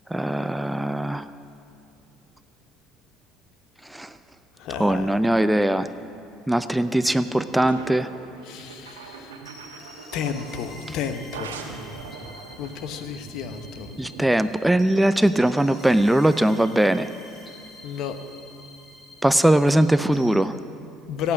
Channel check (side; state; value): both; normal; correlation 0.93